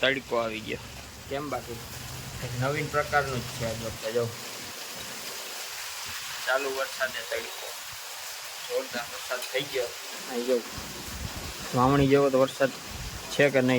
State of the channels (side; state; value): both; identical; correlation 1.00